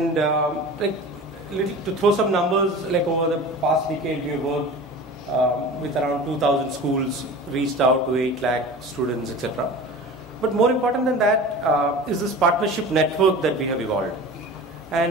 to throw some numbers, like over the past decade, we worked with around 2,000 schools, reached out to 8 lakh students, etc. But more important than that is this partnership network that we have evolved.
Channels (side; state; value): both; normal; correlation 0.36